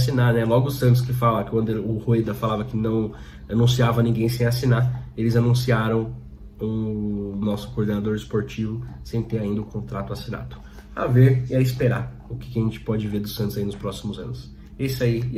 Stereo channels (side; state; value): both; identical; correlation 1.00